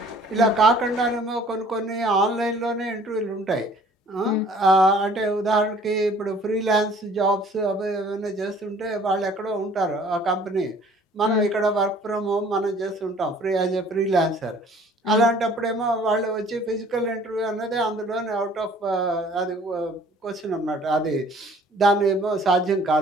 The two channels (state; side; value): normal; both; correlation 0.54